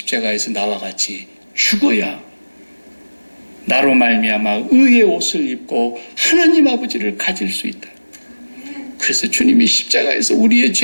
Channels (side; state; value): both; inverted; correlation -1.00